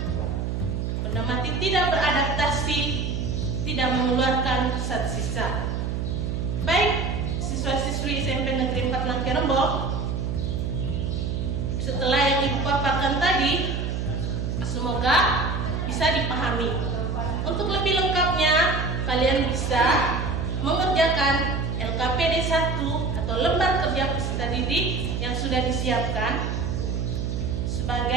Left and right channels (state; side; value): noise; right; hum, 1 dB below the sound